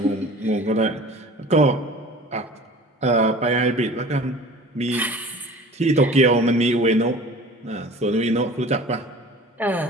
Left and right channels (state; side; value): normal; both; correlation 0.43